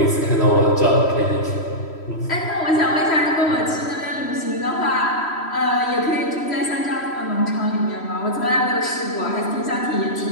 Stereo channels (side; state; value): right; late; 3.1 ms